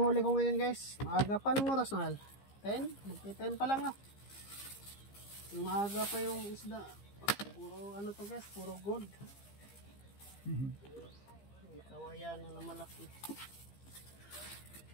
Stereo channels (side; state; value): right; late; 15 ms